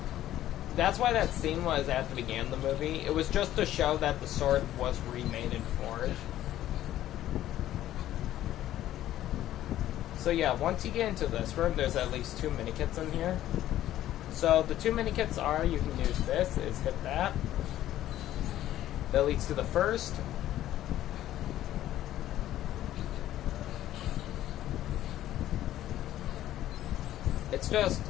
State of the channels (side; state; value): right; quieter; 13.1 dB